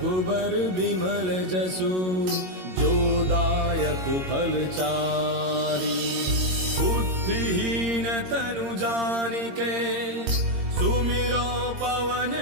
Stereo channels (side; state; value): left; late; 22 ms